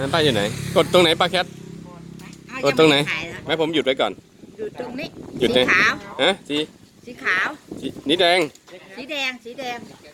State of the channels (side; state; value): both; identical; correlation 1.00